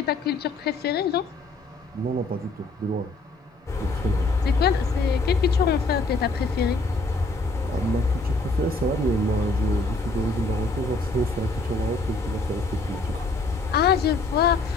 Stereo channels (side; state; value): right; quieter; 3.3 dB